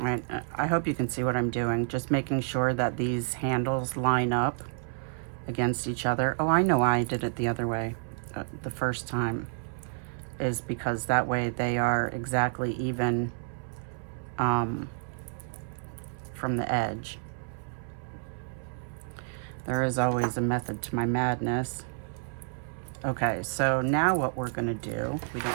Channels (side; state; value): left; silent; 58 dB below the other